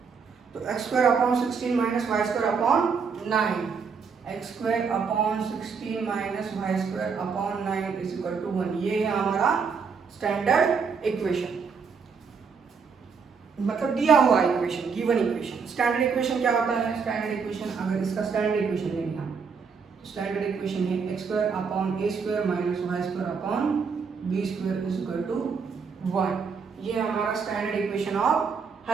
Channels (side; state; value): left; quieter; 5.6 dB